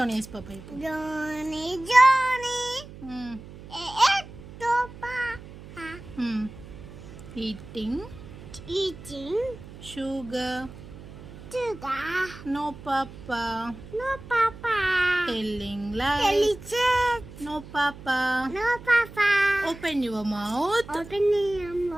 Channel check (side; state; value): right; noise; hum, 16 dB below the sound